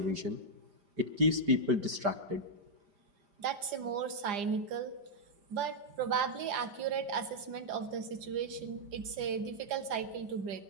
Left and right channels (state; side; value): late; left; 4.9 ms